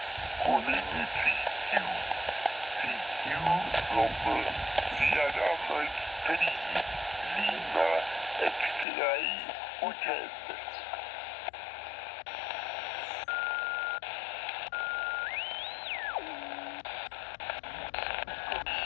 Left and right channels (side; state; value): right; drops out; at 8.8 s